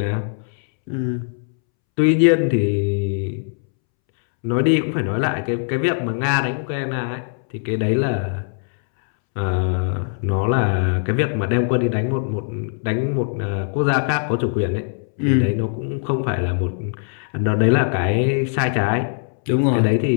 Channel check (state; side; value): silent; right; 65 dB below the other